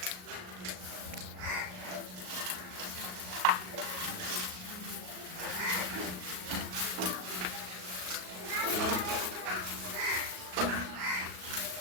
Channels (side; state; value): left; late; 38 ms